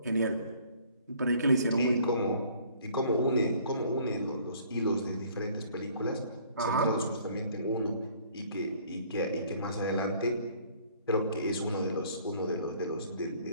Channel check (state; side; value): inverted; both; correlation -0.57